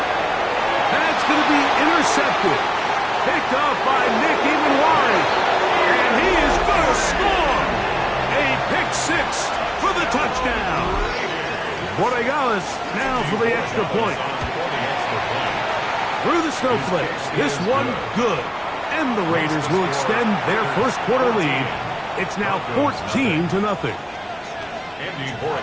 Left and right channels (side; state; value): both; identical; correlation 1.00